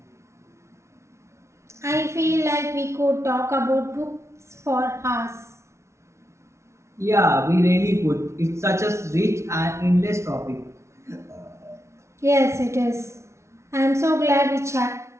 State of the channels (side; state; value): left; late; 0.13 ms